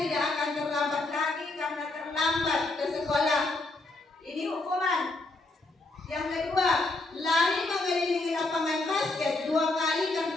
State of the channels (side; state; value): right; quieter; 3.1 dB